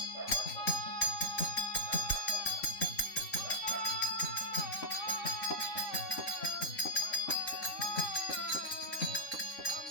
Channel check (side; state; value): right; late; 3.6 ms